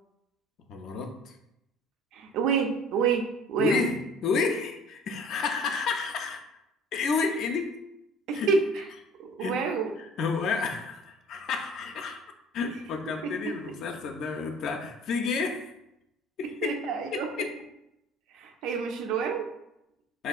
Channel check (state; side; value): normal; both; correlation 0.47